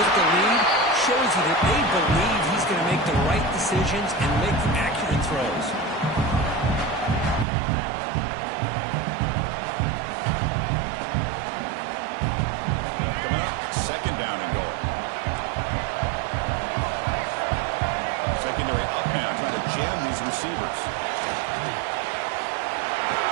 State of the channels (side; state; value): left; drops out; at 7.5 s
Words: the lead shows you that they believe he's going to make the right decisions and make accurate throws. Coming up, 2nd down and goal. Secondary up now, trying to jam these receivers.